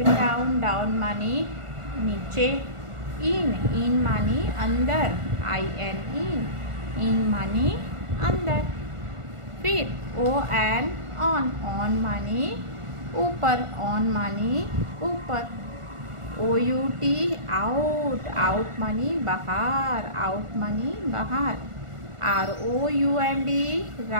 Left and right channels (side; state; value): left; late; 1.4 ms